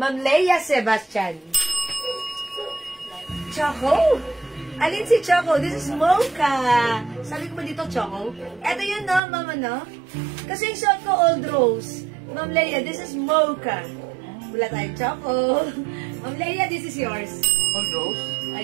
Leia Sebastian. Choco? Alin si Choco? This is Mocha. Sabi ko ba dito Choco? Eto yun no, Mama no? Kasi yung suot ko Old Rose. Ma'am Leia, this is Mocha. Wala tayong Choco. Ma'am Leia, this is yours. Old Rose?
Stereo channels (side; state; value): left; drops out; at 9.2 s